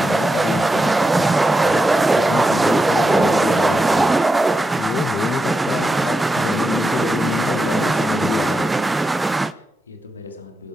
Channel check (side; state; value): both; normal; correlation 0.88